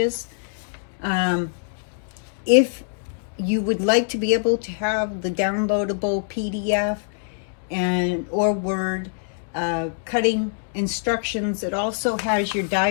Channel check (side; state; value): right; silent; 63 dB below the other